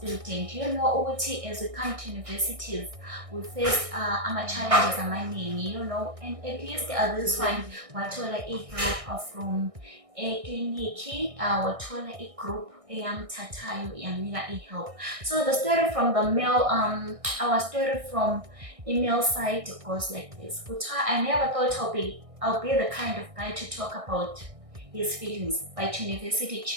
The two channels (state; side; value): late; left; 1.6 ms